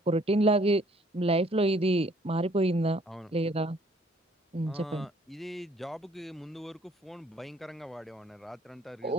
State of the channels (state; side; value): normal; both; correlation 0.60